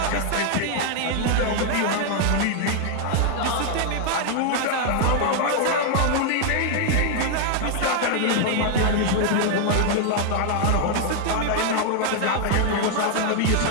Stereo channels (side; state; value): both; different; correlation 0.00